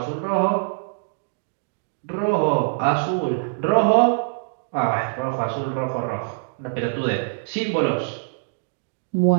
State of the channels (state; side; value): silent; left; digital silence